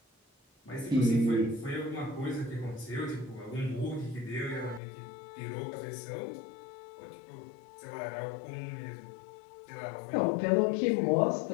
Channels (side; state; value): right; drops out; at 4.8 s